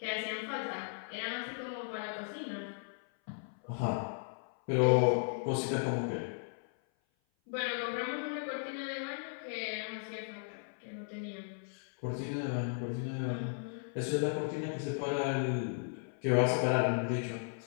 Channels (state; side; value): silent; right; 54 dB below the other